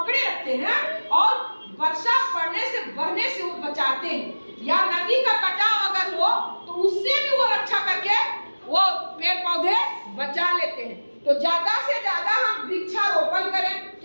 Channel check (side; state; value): both; inverted; correlation -1.00